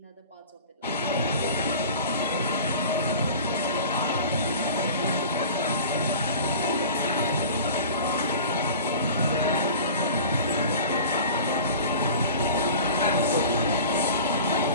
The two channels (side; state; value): both; inverted; correlation -0.39